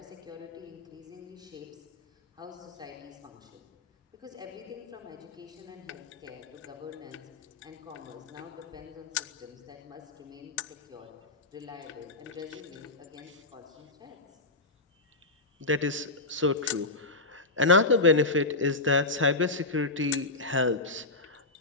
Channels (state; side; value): quieter; right; 3.1 dB